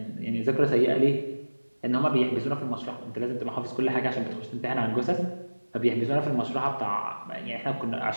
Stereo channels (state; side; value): inverted; both; correlation -1.00